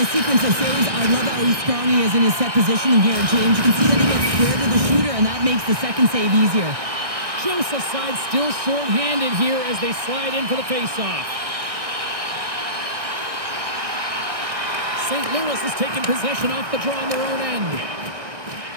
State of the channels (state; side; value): late; left; 1.6 ms